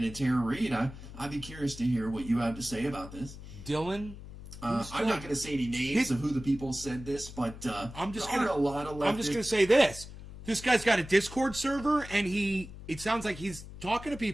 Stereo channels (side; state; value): left; noise; hum, 14 dB below the sound